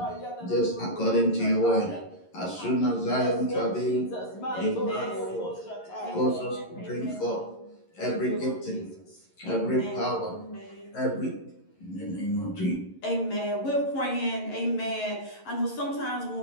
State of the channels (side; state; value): right; late; 11 ms